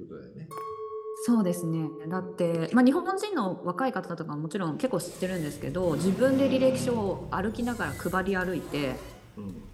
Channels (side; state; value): both; identical; correlation 1.00